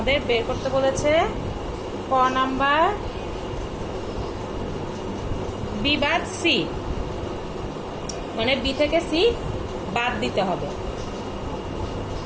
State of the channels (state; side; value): identical; both; correlation 1.00